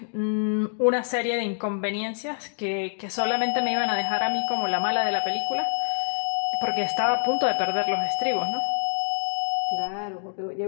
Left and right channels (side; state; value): right; silent; digital silence